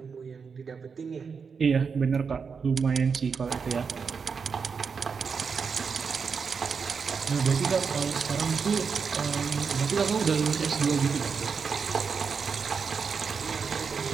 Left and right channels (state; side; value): quieter; left; 5.7 dB